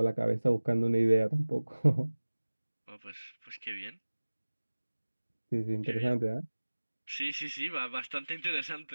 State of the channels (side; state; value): both; inverted; correlation -1.00